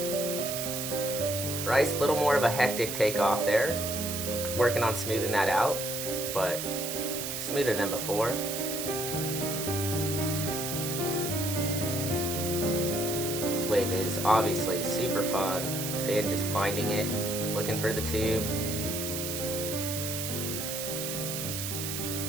Bryce, a little more of a hectic takeoff there. Working on smoothing that out, but smoother than before. This wave is obviously super fun. Finn just finding it, looking for the tube.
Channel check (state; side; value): noise; right; hiss, 4 dB below the sound